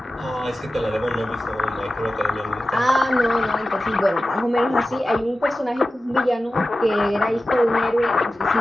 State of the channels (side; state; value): both; normal; correlation 0.94